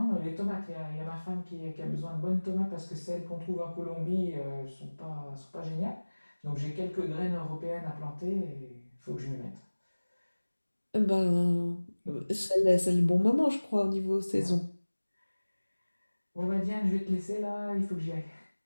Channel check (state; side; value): inverted; both; correlation -1.00